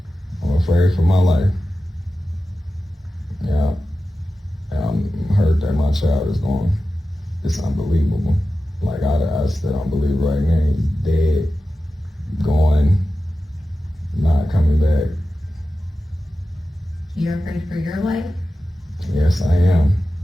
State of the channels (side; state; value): both; normal; correlation 0.93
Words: I'm afraid for my life. Yeah. And I'm hurt that my child is gone. It's unbelievable. Like I still don't believe right now he's dead, gone, not coming back. You're afraid for your life? Yes, I am.